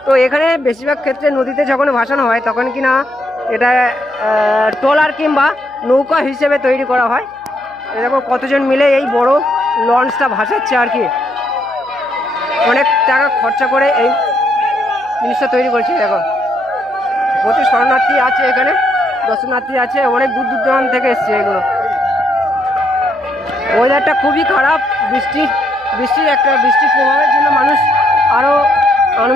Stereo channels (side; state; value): right; noise; hum, 30 dB below the sound